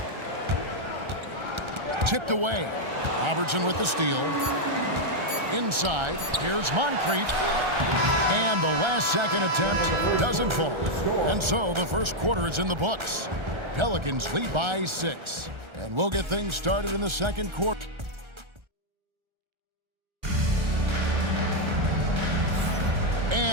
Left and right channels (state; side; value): late; left; 1.3 ms